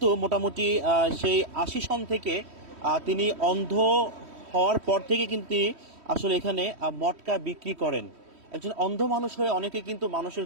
মোটামুটি সেই 80 সন থেকে তিনি অন্ধ হওয়ার পর থেকে কিন্তু আসলে এখানে মটকা বিক্রি করেন। একজন অন্ধ মানুষ হয়ে অনেকে কিন্তু মানুষের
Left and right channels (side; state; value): left; late; 3.1 ms